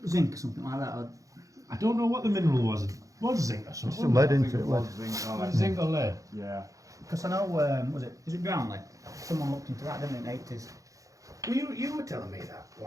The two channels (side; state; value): left; late; 0.16 ms